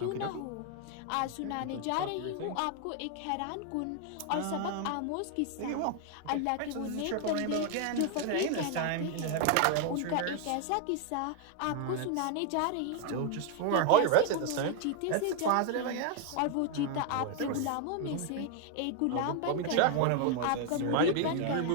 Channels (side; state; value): both; different; correlation 0.00